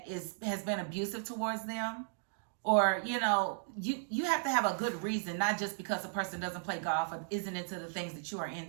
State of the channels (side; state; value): left; silent; digital silence